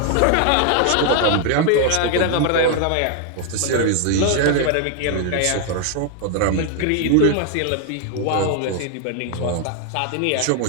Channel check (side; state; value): both; different; correlation 0.00